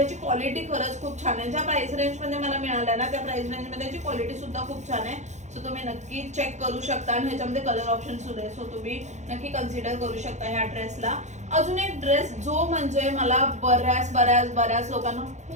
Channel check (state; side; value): late; left; 0.34 ms